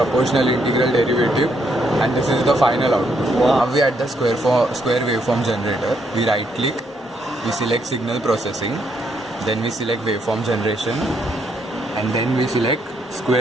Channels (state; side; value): normal; both; correlation 0.74